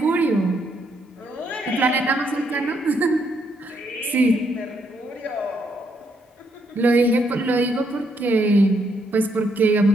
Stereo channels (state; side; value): normal; both; correlation 0.75